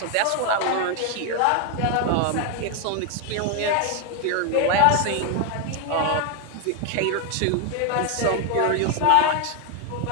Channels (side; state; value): both; different; correlation 0.01